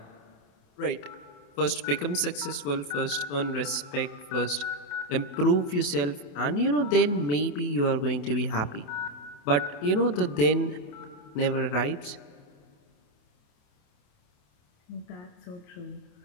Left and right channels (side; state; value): right; late; 28 ms